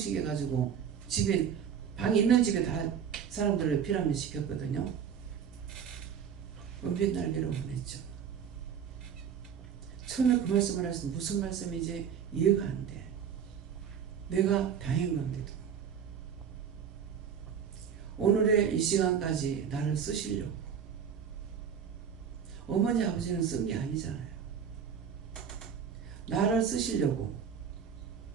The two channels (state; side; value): quieter; left; 7.8 dB